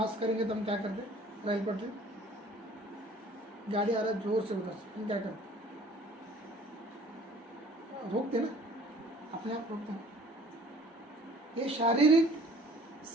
करेंगे तो हम क्या करते? रेल पटरी, गाड़ी आ रहा है जोर से उधर से, हम क्या करते? रोकते ना, अपने आप रोकते हैं। ये शारीरिक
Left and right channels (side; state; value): both; normal; correlation 0.52